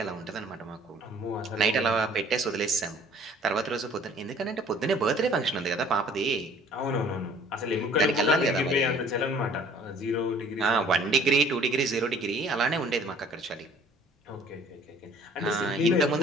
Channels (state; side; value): normal; both; correlation 0.54